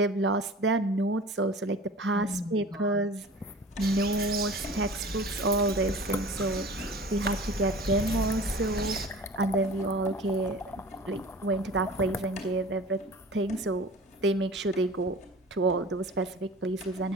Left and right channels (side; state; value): both; normal; correlation 0.41